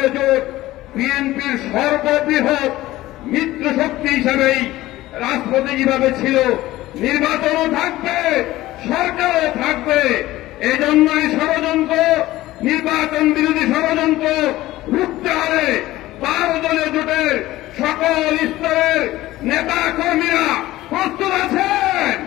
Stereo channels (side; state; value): right; quieter; 16.6 dB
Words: জোট বিএনপির সর্ববৃহৎ মিত্র শক্তি হিসাবেই রাজপথে যেভাবে ছিল, নির্বাচনও থাকবে, সরকারও থাকবে। এই জন্যই ষড়যন্ত্র, নির্বাচন বিরোধী ষড়যন্ত্র রুখতে হবে। 12 দলীয় জোটের সকল স্তরের নেতা কর্মীরা প্রস্তুত আছেন।